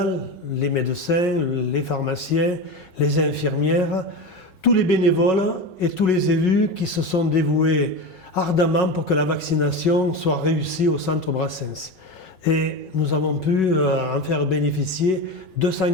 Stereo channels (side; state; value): both; normal; correlation 0.22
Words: les médecins, les pharmaciens, les infirmières, tous les bénévoles et tous les élus qui se sont dévoués ardemment pour que la vaccination soit réussie au centre Brassens. Et nous avons pu en faire bénéficier